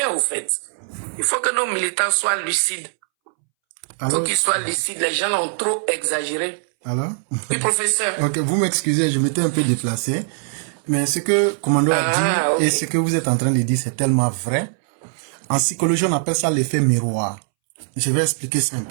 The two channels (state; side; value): silent; left; 65 dB below the other